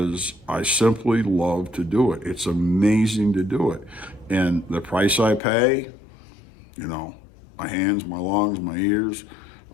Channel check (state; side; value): drops out; right; at 5.4 s